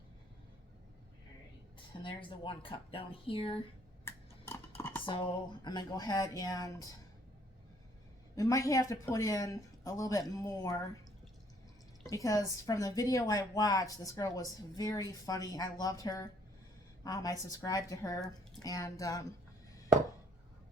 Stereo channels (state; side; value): normal; both; correlation 0.63